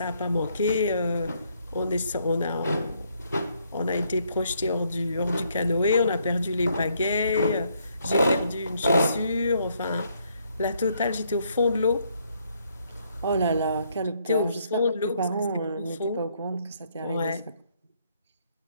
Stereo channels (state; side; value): inverted; both; correlation -0.71